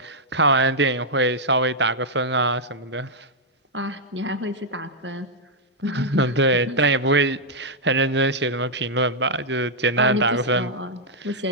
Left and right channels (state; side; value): normal; both; correlation -0.04